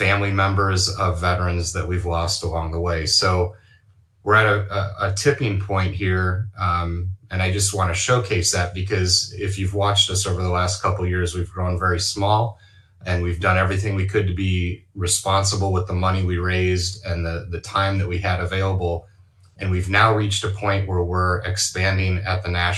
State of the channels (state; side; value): identical; both; correlation 1.00